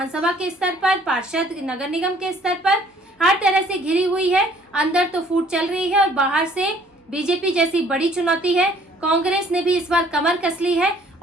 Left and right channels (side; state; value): both; normal; correlation 0.59